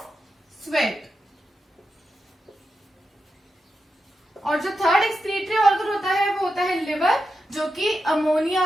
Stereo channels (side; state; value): both; normal; correlation 0.88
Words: sweat. और जो थर्ड एक्सक्रीटरी ऑर्गन होता है वो होता है लिवर, जो कि